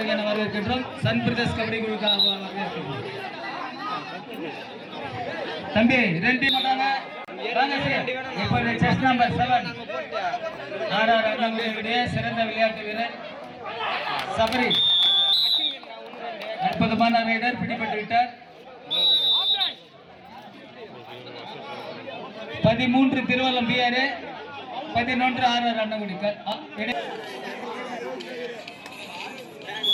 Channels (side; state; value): both; identical; correlation 1.00